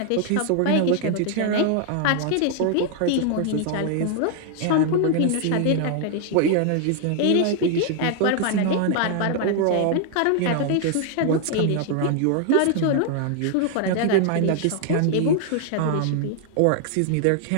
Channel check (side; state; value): both; different; correlation 0.00